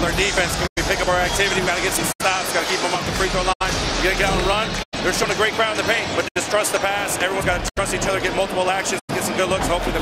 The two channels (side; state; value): both; identical; correlation 1.00